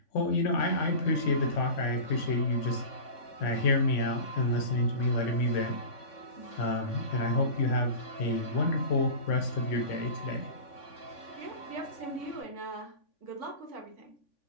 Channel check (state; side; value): late; right; 3.5 ms